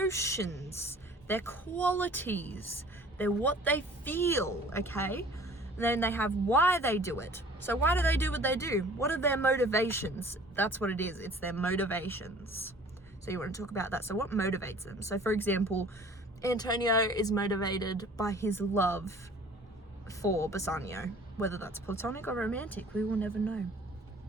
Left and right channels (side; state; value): both; normal; correlation 0.49